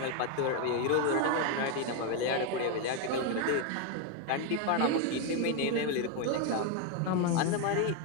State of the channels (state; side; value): different; both; correlation 0.01